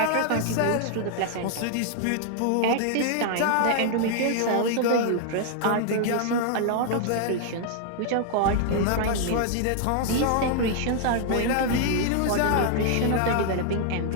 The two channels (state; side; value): different; both; correlation 0.00